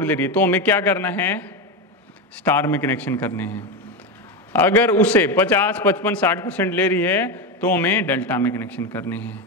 ले रही है, तो हमें क्या करना है, स्टार में कनेक्शन करने हैं। अगर उसे 50, 55, 60% ले रही है तो हमें डेल्टा में कनेक्शन करने हैं।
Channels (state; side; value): normal; both; correlation 0.14